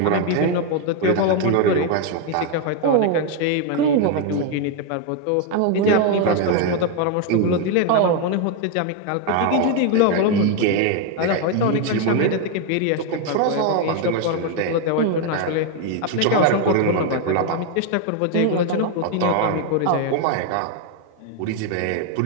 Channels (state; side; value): different; both; correlation 0.01